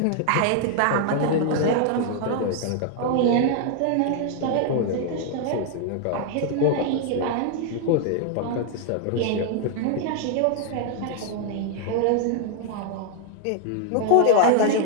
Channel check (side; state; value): both; different; correlation 0.00